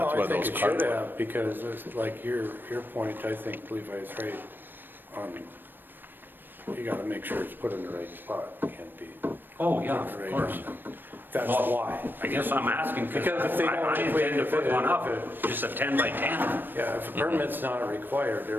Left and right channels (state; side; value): late; left; 0.094 ms